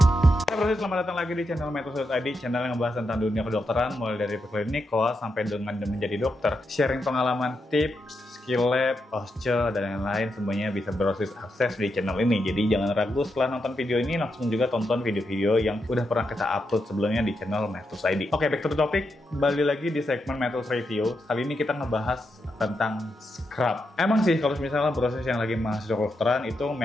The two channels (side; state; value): both; normal; correlation 0.84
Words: Selamat datang lagi di channel Metus.id, channel yang membahas tentang dunia kedokteran mulai dari preklinik, koas, sampai dengan menjadi dokter. Sharing pengalaman, tips, skill lab, posture, dan lain-lain semuanya bisa berbasis akses di channel ini. Jadi jangan ragu setelah nonton video ini langsung juga tonton video-video yang udah pernah kita upload sebelumnya di channel Metus.id. Oke, back to the topic. Kembali lagi di segmen Metus Review. Kali ini kita ngebahas tentang scrub. Emang sih kalau misalnya proses yang lagi mahasiswa kedokteran itu